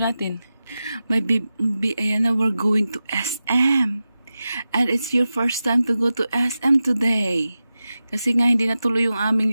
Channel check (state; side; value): inverted; both; correlation -0.93